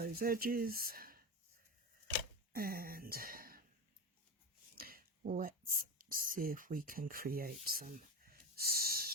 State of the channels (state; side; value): normal; both; correlation 0.22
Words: edges. And let's see if we can create some